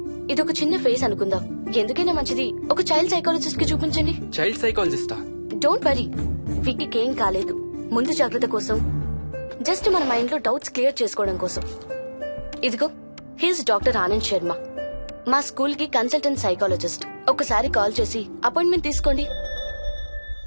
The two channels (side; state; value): both; inverted; correlation -1.00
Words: ఇదొక చిన్న ఫేస్ అనుకుందాం. ఎందుకైనా మంచిది ఒక చైల్డ్ సైకాలజిస్ట్ కి చూపించండి. చైల్డ్ సైకాలజిస్టా? డోంట్ వరీ, విక్కీకి ఏం కాలేదు. ముందు జాగ్రత్త కోసం, జస్ట్ మన మైండ్ లో డౌట్స్ క్లియర్ చేసుకోవడం కోసం. ఇదిగో, హీస్ డాక్టర్ ఆనంద్ శర్మ, మా స్కూల్ కి కన్సల్టెంట్ సైకాలజిస్ట్. ఒకసారి కాల్ చేసి అపాయింట్మెంట్ తీసుకోండి.